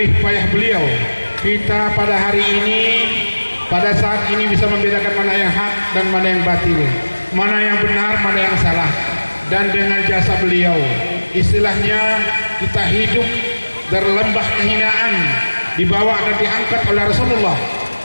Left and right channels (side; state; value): both; inverted; correlation -1.00